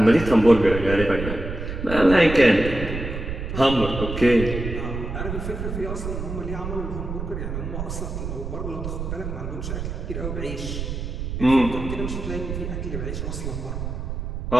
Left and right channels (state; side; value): noise; right; rumble, 5 dB below the sound